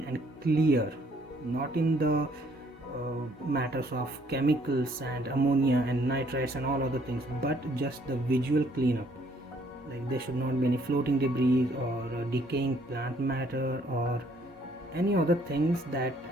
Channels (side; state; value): both; normal; correlation 0.64